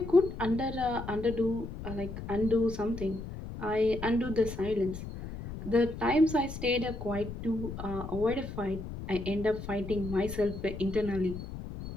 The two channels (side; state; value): left; noise; rumble, 9 dB below the sound